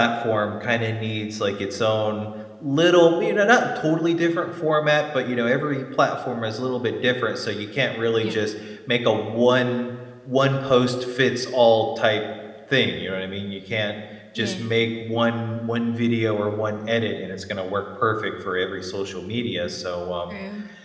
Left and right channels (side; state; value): both; identical; correlation 1.00